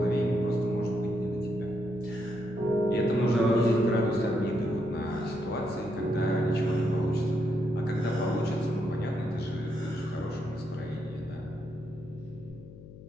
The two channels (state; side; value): noise; left; hum, 17 dB below the sound